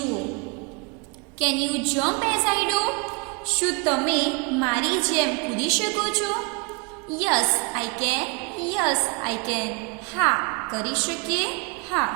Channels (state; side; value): quieter; left; 31.2 dB